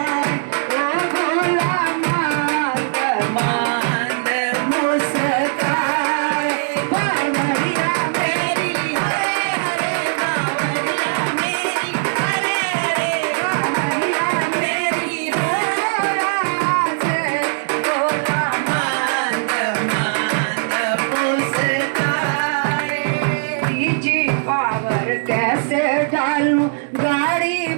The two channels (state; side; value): silent; left; digital silence